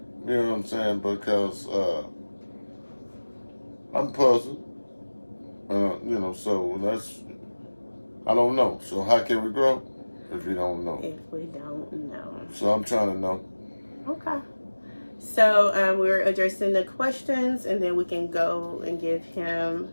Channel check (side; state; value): both; inverted; correlation -1.00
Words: You know what I'm saying? Because I'm puzzled. So I don't know. So how can we grow if we don't know? If we don't know. So I'm trying to know. Okay. So we're addressing the questions, and then we can go and give him